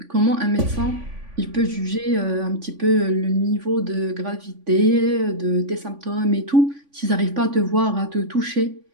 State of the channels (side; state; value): left; late; 3.5 ms